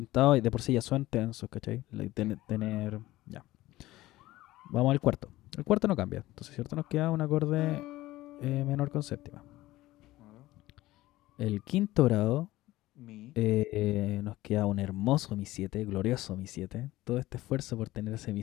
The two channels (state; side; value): quieter; right; 17.1 dB